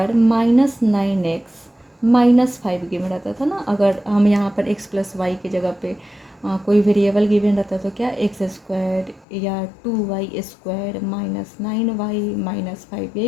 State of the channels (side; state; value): right; drops out; at 9.2 s